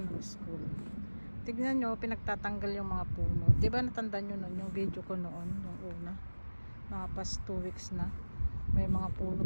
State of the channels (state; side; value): inverted; both; correlation -1.00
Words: ng school. Tignan nyo, pinagtatanggal yung mga puno. Diba natandaan nyo nun, yung video ko noon, yung una. Mga past 2 weeks na. May mga puno